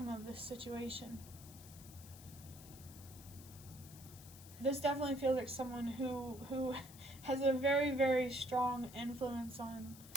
of this situation. this definitely feels like someone who has a very, very strong influence on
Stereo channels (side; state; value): left; noise; hiss, 17 dB below the sound